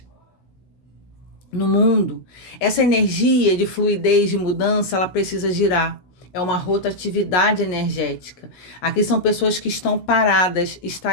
no mundo. Essa energia de fluidez, de mudança, ela precisa girar. É uma rotatividade energética. Aqui são pessoas que estão paradas,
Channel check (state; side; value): late; right; 16 ms